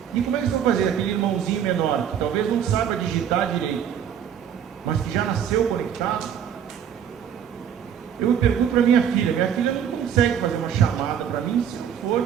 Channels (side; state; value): left; quieter; 8.8 dB